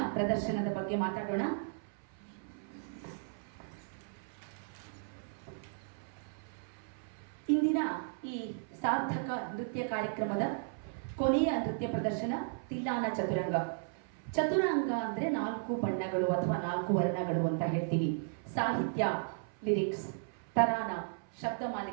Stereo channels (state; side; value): silent; left; 54 dB below the other